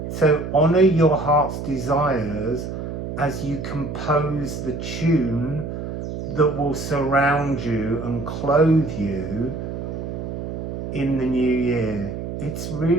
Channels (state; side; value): noise; right; hum, 6 dB below the sound